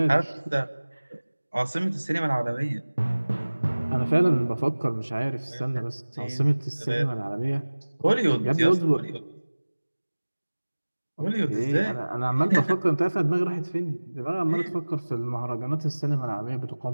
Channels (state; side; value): inverted; both; correlation -1.00